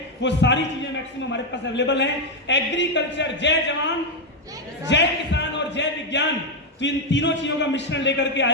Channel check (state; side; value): normal; both; correlation 0.04